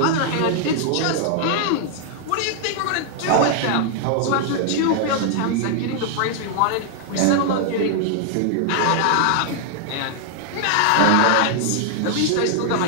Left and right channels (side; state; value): both; different; correlation 0.00